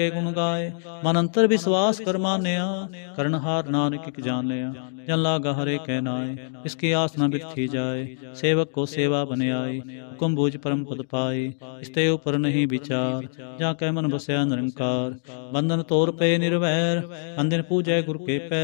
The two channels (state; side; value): silent; right; digital silence